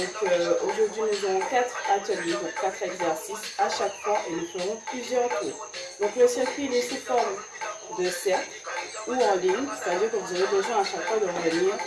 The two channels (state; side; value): identical; both; correlation 1.00